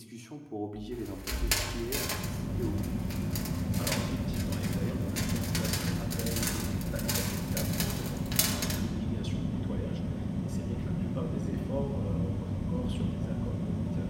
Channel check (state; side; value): identical; both; correlation 1.00